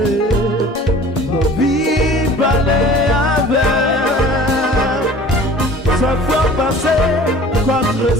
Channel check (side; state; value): both; normal; correlation 0.46